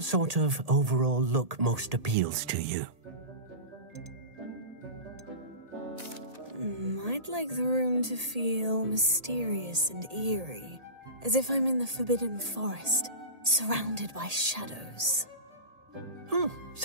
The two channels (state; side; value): late; left; 1.8 ms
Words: sort of overall look most appeals to you? I'd I'd like the room to feel mysterious and eerie, as if I'm in the Forbidden Forest, surrounded by shadows. Oh,